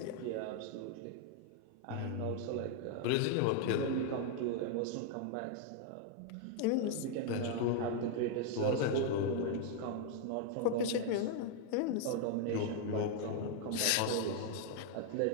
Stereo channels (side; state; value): both; different; correlation 0.00